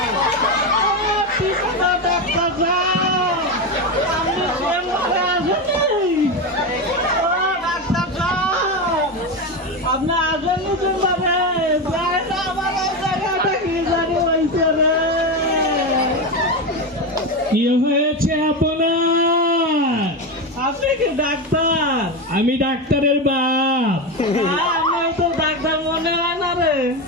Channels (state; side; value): normal; both; correlation 0.15